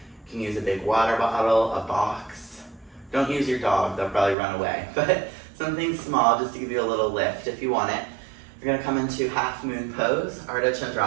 You can use a big water bottle, a box. Don't use your dog, they'll probably run away. But something small just to give you a little lift if you want it. You're gonna come into half moon pose, Ardha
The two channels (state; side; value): drops out; left; at 4.4 s